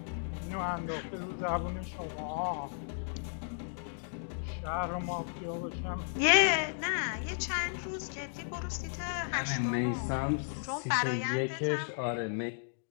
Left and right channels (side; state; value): right; silent; digital silence